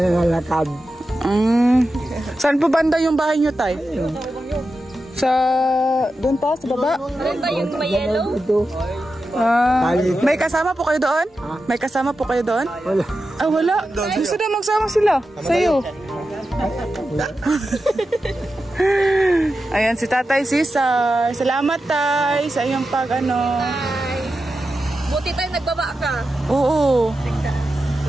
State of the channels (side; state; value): both; normal; correlation 0.91